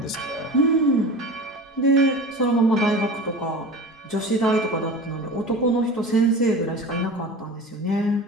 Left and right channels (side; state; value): both; normal; correlation 0.34